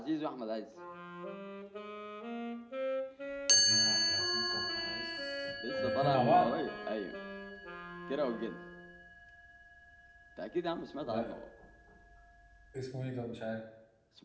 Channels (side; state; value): both; identical; correlation 1.00